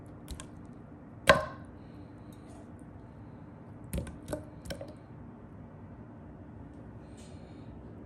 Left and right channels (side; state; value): both; identical; correlation 1.00